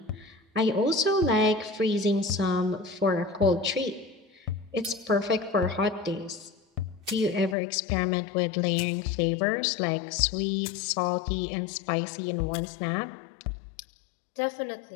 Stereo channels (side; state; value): right; drops out; at 7.6 s